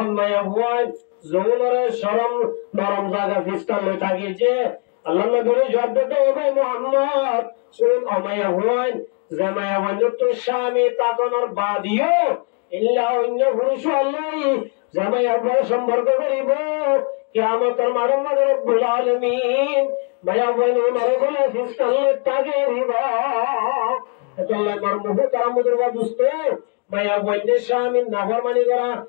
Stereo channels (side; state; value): right; quieter; 36.9 dB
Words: মায়া বইন জোরে শরম নরম জায়গা ফিস্তালে তাগি যে আল্লাহ নবী জবাব দিতে হবে মুহাম্মদ শুন আমায়া হুয়ান জামায়া ওয়াজত শামি তাকনার বাদিও ইল্লা অন্য পুরুষ আল্লাহ জামায়া বড় সম্পর্ক করিব কিয়ামতের মাঠে রব্বুল আলামিন মায়া বইন নরকলে ফিস্তালে তাগে রিবা আল্লাহ মরমুহ তারামুদুর দুস্ত মায়া বইন শামি নাফরমানি করা